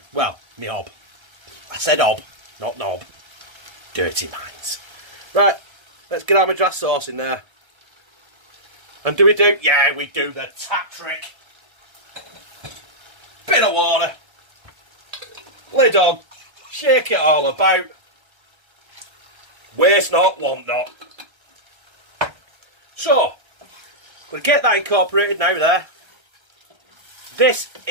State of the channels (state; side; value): late; left; 1.3 ms